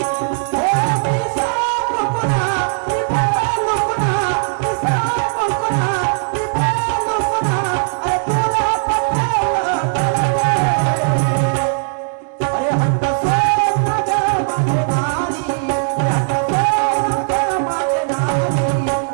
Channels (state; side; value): silent; left; digital silence